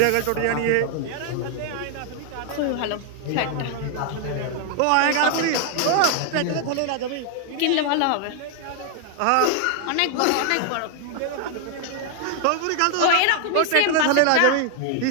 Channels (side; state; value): both; different; correlation 0.00